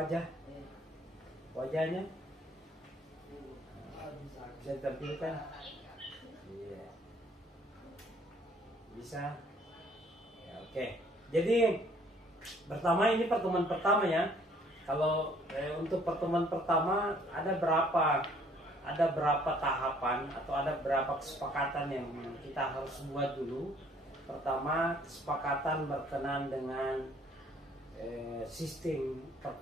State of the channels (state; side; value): normal; both; correlation 0.60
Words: wajahnya, bisa ditampilkan, iya. Bisa ya, oke. Jadi pertama ini pertemuan pertama ya. Kalau untuk pertemuan pertama ada berapa tahapan atau ada berapa kesepakatan yang kita harus buat dulu. Pertama, kesepakatan berkenan dengan sistem